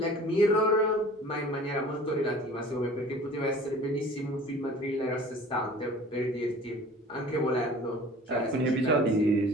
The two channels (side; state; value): both; normal; correlation 0.45